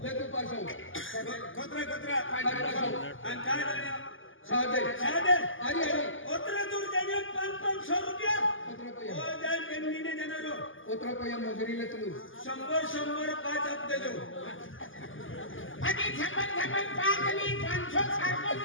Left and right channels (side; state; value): right; late; 0.58 ms